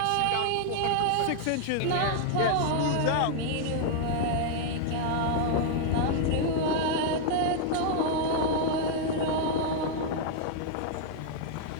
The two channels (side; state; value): both; different; correlation 0.00